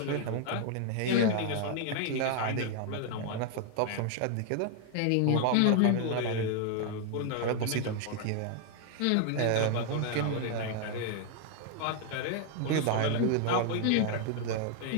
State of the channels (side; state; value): both; different; correlation 0.00